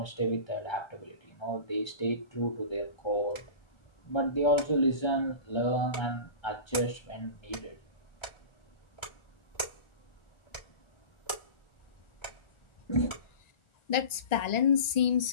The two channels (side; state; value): right; late; 1.4 ms